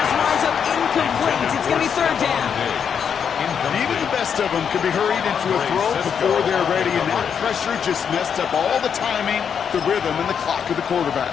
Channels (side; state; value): right; quieter; 7.4 dB